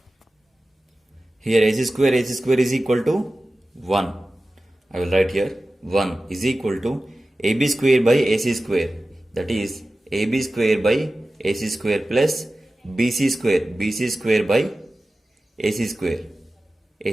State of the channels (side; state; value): both; normal; correlation 0.95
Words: Here AC square is equal to 1. I will write here 1 is equal to AB square by AC square, that is AB square by AC square plus BC square by AC square.